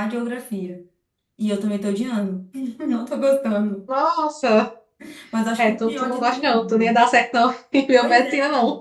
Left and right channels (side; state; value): both; identical; correlation 1.00